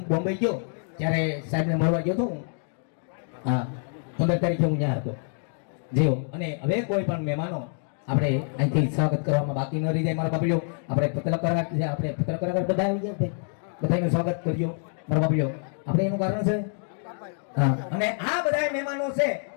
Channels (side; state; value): right; silent; 61 dB below the other